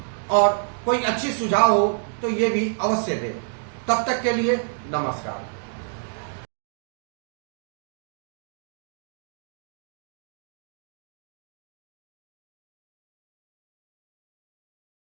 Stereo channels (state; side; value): silent; left; digital silence